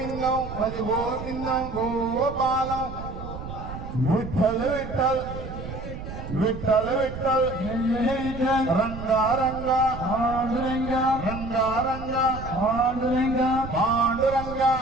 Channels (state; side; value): noise; right; rumble, 10 dB below the sound